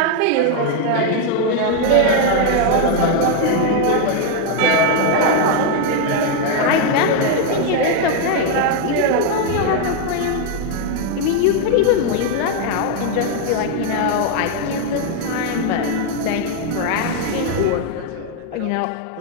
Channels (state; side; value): different; both; correlation 0.01